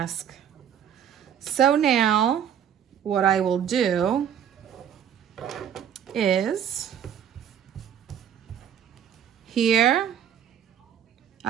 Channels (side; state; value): left; quieter; 9.2 dB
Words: So now, what I will do is here,